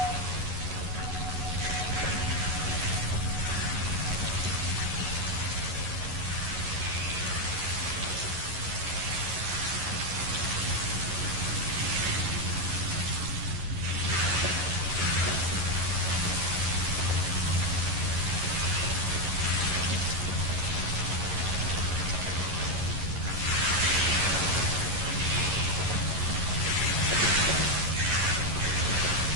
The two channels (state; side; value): late; left; 11 ms